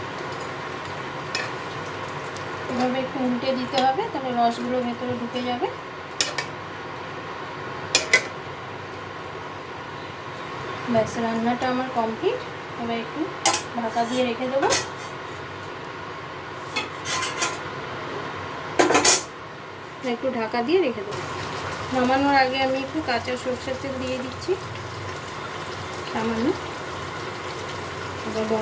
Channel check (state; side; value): identical; both; correlation 1.00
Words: এভাবে একটু উল্টে দিতে হবে, তাহলে রসগুলো ভেতরে ঢুকে যাবে। ব্যাস, রান্নাটা আমার কমপ্লিট। এবার একটু ঢাকা দিয়ে রেখে দেবো। একটু ঢাকা দিয়ে রেখে দেবো। নামানোর আগে আমি একটু কাঁচা সরষের তেল দিয়ে দিচ্ছি সামান্য। এবার